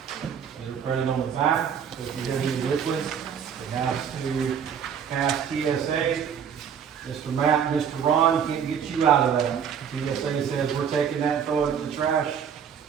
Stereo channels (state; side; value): quieter; left; 7.8 dB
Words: that are printed on the back, so if you have any liquid, it has to pass TSA. Mr. Matt and Mr. Ron can't get you out of that. TSA says, we're taking that and throwing it in the trash.